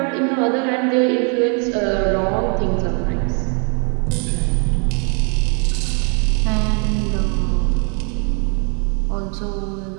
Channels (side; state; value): left; quieter; 39.4 dB